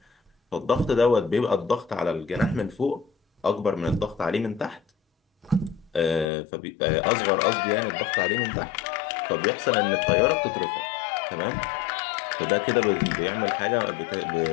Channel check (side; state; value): right; drops out; at 6.3 s